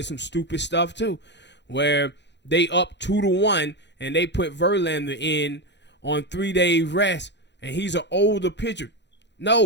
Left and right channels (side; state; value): right; late; 0.51 ms